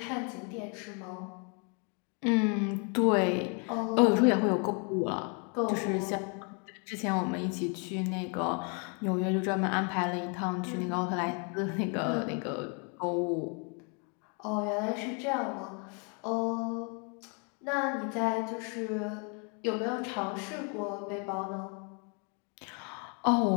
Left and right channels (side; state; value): right; quieter; 36.6 dB